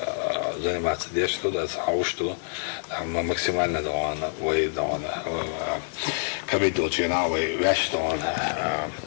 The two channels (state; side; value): silent; right; 61 dB below the other